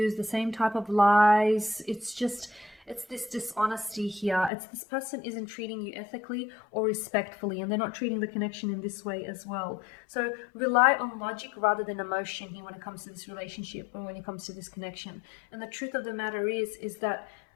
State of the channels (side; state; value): right; drops out; at 4.5 s